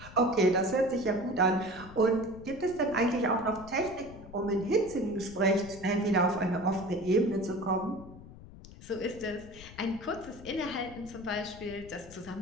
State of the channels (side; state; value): left; noise; rumble, 17 dB below the sound